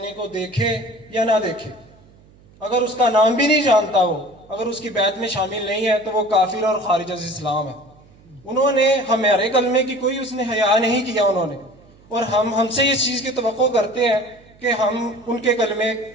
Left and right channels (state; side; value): noise; right; hum, 27 dB below the sound